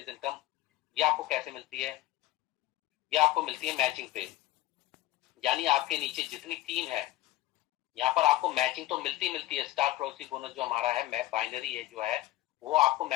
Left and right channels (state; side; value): quieter; right; 16.4 dB